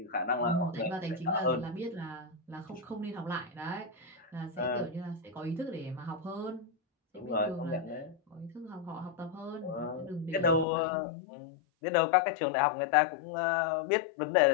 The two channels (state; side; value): drops out; right; at 10.7 s